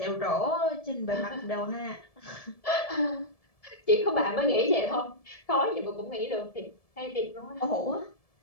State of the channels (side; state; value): right; late; 1.7 ms